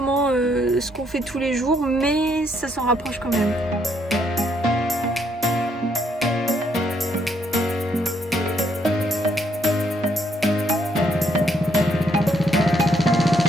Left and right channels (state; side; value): normal; both; correlation 0.71